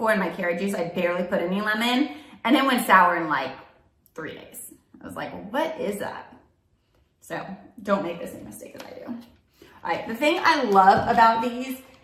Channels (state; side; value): identical; both; correlation 1.00